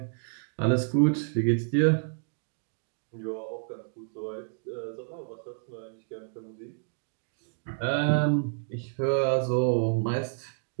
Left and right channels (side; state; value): left; silent; digital silence